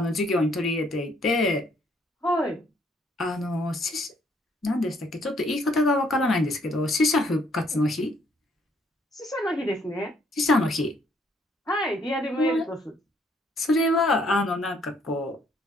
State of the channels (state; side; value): normal; both; correlation 0.67